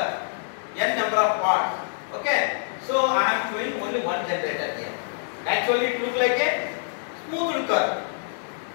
of parts. Okay. So I am showing only one generator here. Actually, it looks like a smooth curve.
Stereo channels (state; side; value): silent; right; digital silence